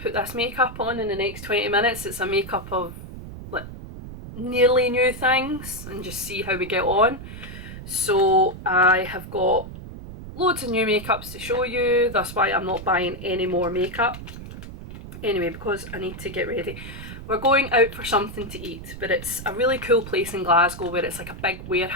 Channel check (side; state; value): right; noise; rumble, 12 dB below the sound